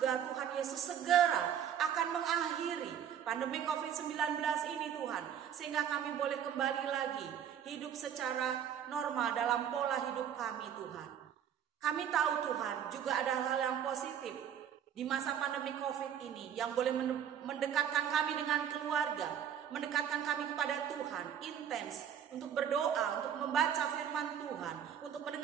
Tuhan Yesus segera akan mengakhiri pandemi COVID-19 ini Tuhan. Sehingga kami boleh kembali lagi hidup secara normal dalam pola hidup kami Tuhan. Kami tahu Tuhan juga ada hal yang positif di masa pandemi COVID ini yang boleh mendekatkan kami dengan keluarga, mendekatkan kami kepada Tuhan, intens untuk berdoa, untuk membaca firman Tuhan, untuk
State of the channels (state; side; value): quieter; left; 9.0 dB